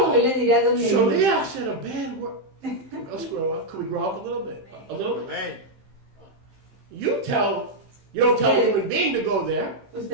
le diré a dónde ir. Shaliach said a bad word. Let's grow up. Can we grow up a little bit? A little bit. You don't tell a human being to go there.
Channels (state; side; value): late; left; 15 ms